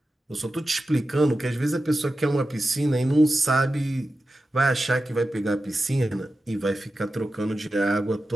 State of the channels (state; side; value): normal; both; correlation 0.92